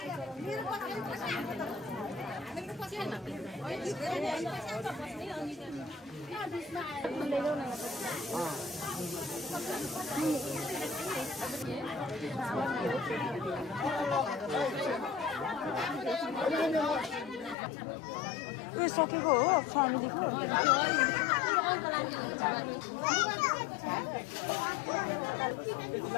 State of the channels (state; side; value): drops out; right; at 17.6 s